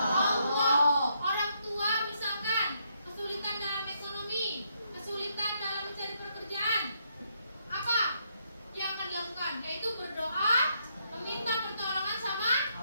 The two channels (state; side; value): inverted; both; correlation -0.76